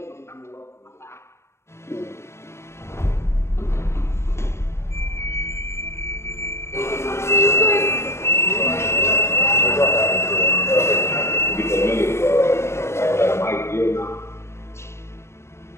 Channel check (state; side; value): late; right; 0.13 ms